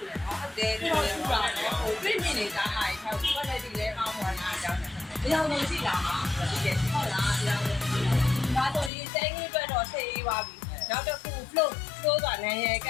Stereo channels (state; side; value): drops out; right; at 8.9 s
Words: ူတယ်နော်ဟုတ်တယ်ထူလဲထူတာနော်ဟိုပြင်းပြင်းနေတာဟာထောက်ကွက်လက်ဒီလဲအောင်းပေါ်လာအကြောင်းတယ်အကြောင်းလုံးရှိလာမှာဒီကဟုတ်လားအကြောင်းလုံးဒါဆိုဒီစမ်းခင်းအတွက်တော့ဆေးရေးပါပြီနောက်တစ်ခု flow ကနိုင်ရက